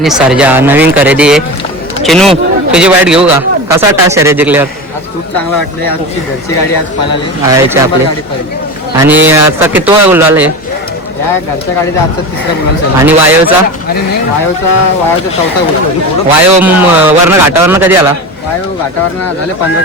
सर्जा नवीन खरेदी आहे. चिनू तुझी वाईट घेऊ का? कसा टास शर्यत जिंकल्यावर? आज खूप चांगलं वाटलं. आमची घरची गाडी आज पळाली आहे आपली. आणि आता किती गुलाल आहे या घरच्या गाडीचा? आजचा तिसरा गुलाल. आणि वायवचा? वायवचा चौथा गुलाल. वायव वरनं घाटावरनं कधी आला? वायव घाटावरनं झाले 15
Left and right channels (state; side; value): normal; both; correlation 0.26